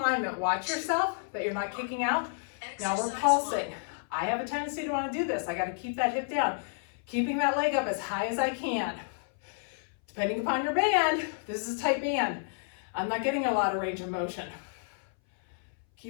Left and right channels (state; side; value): silent; right; 57 dB below the other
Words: Watch yourself that you're not kicking out. Now we're pulsing. I have a tendency to want to do this. I got to keep that hip down. Keeping that leg up as high as I can. Depending upon your band, this is a tight band. I'm not getting a lot of range of motion.